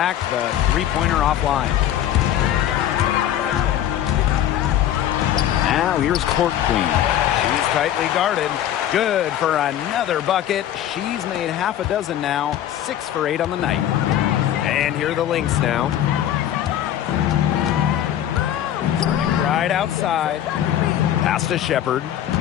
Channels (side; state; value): right; quieter; 11.3 dB